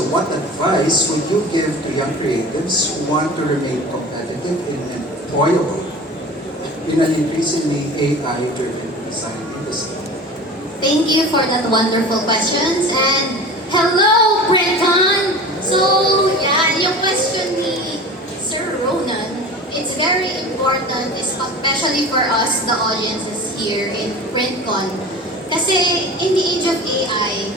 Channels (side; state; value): both; normal; correlation 0.37